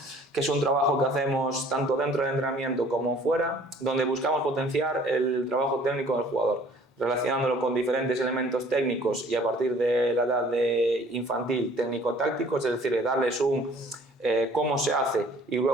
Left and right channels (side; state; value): both; normal; correlation 0.54